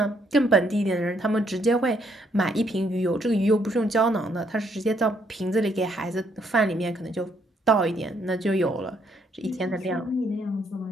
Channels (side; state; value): both; normal; correlation 0.71